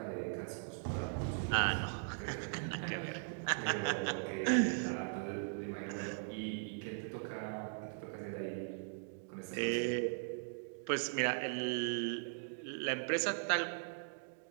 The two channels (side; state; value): left; silent; digital silence